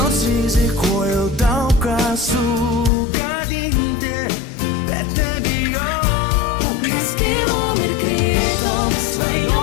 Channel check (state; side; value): drops out; right; at 2.9 s